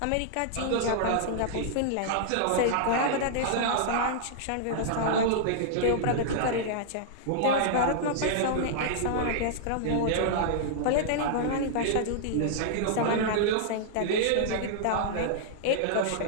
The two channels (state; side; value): different; both; correlation -0.01